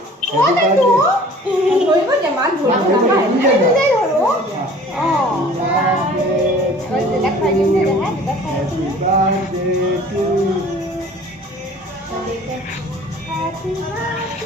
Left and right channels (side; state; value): both; normal; correlation 0.48